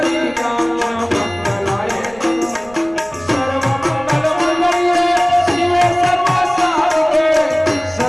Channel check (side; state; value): right; noise; rumble, 23 dB below the sound